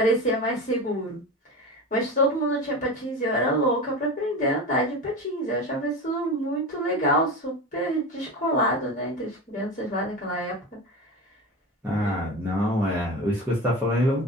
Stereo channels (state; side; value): normal; both; correlation 0.27